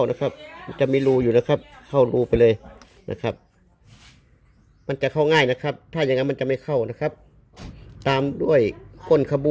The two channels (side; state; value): both; identical; correlation 1.00